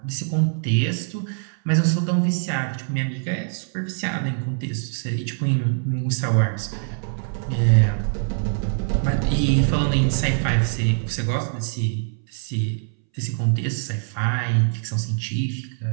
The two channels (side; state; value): left; silent; 63 dB below the other